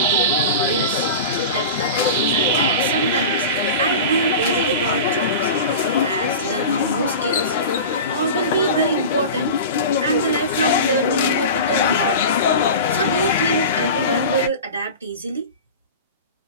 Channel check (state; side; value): inverted; both; correlation -0.31